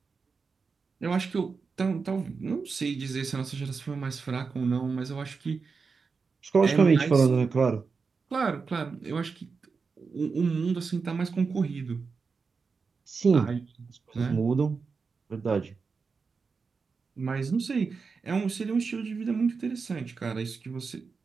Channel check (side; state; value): left; quieter; 4.9 dB